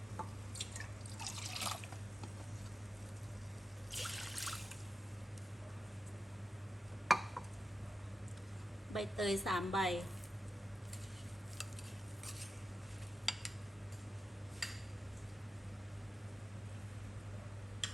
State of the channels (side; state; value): both; normal; correlation 0.90